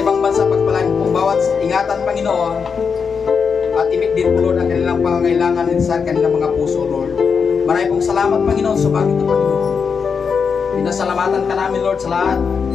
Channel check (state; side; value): quieter; right; 5.9 dB